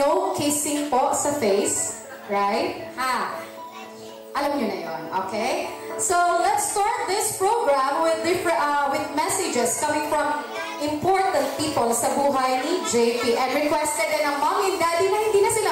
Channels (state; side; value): identical; both; correlation 1.00